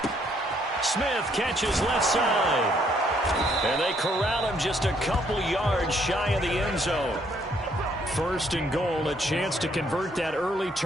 Smith catches left side. And they corral him just a couple yards shy of the end zone. 1st and goal, a chance to convert that early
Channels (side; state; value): both; normal; correlation 0.68